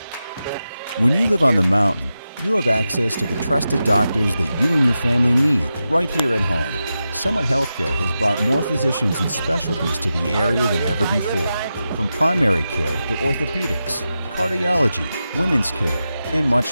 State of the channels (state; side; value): inverted; both; correlation -0.91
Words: When you live on the mountain, you have access to the trusted doctors that you and your family need right here at home. Summit Healthcare has brought more physicians and specialties to the area than ever before. From primary care to orthopedics, cardiology, women's care, and